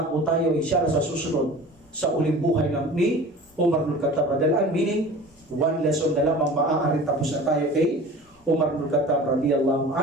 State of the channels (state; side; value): normal; both; correlation 0.40